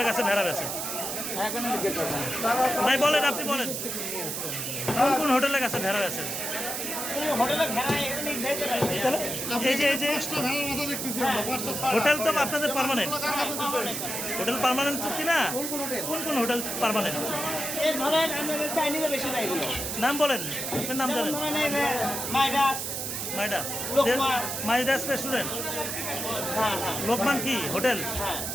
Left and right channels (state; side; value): noise; right; hiss, 3 dB below the sound